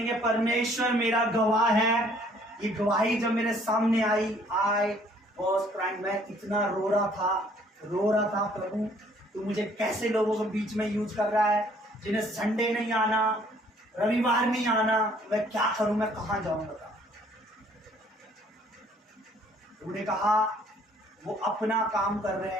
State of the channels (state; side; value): normal; both; correlation 0.60